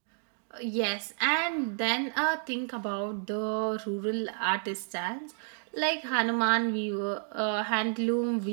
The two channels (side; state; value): left; silent; 57 dB below the other